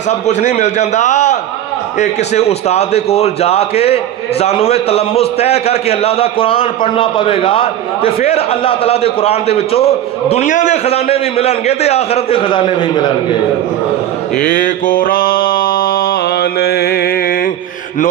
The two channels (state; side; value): quieter; left; 11.8 dB